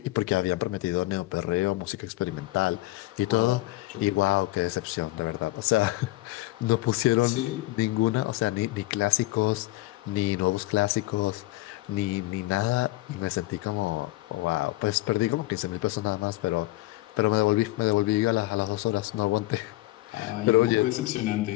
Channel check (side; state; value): right; quieter; 18.5 dB